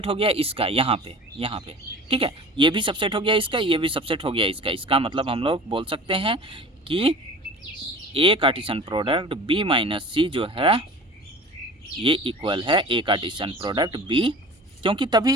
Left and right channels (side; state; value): both; normal; correlation 0.40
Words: हो गया इसका, यहाँ पे ठीक है, ये भी सबसेट हो गया इसका, ये भी सबसेट हो गया इसका। इसका मतलब हम लोग बोल सकते हैं कि A Cartesian product B minus C जो है ये इक्वल है A कार्टेशियन प्रोडक्ट B, क्योंकि